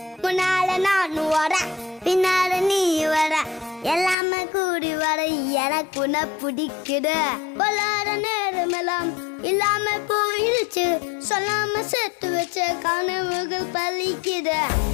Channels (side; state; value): right; drops out; at 4.2 s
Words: முன்னால நான் வர பின்னால நீ வர எல்லாமே கூடி வர எனக்கு உன்னை பிடிக்குது பொல்லாத நேரமெல்லாம் இல்லாம போயிடுச்சு சொல்லாம சேர்த்து வச்ச கனவுகள் பலிக்குது